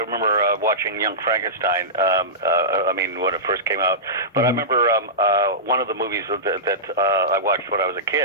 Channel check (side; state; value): both; normal; correlation -0.16